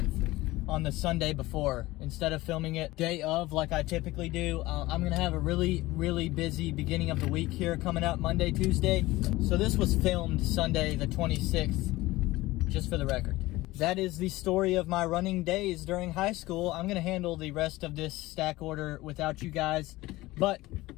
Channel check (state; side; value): quieter; right; 18.9 dB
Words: on the Sunday before, instead of filming it day of like I typically do. I'm gonna have a really busy beginning of the week here coming up Monday, Tuesday. So this was filmed Sunday the 26th, just for the record. That is the story of my running days during high school. I'm gonna handle the rest of this stack order without you guys, but